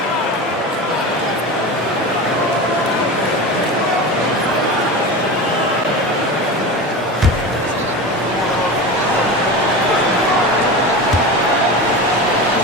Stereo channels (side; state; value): both; normal; correlation 0.27